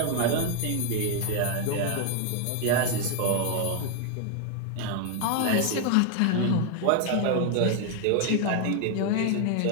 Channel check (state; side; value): different; both; correlation 0.00